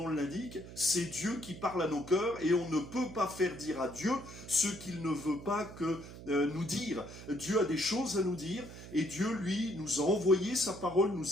l'indique, c'est Dieu qui parle à nos cœurs, et on ne peut pas faire dire à Dieu ce qu'il ne veut pas que nous dire. Dieu a des choses à nous dire, et Dieu, lui, nous a envoyé sa parole,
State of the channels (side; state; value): right; noise; hum, 14 dB below the sound